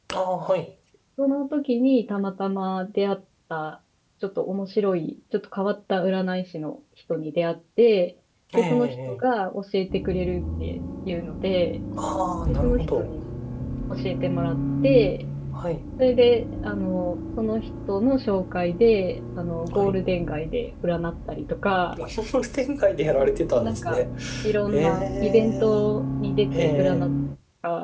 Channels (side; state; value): both; identical; correlation 1.00